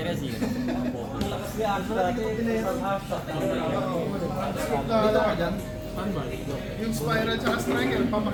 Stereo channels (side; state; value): both; identical; correlation 1.00